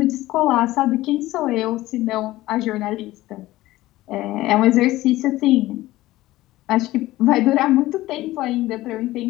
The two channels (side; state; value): right; quieter; 17.0 dB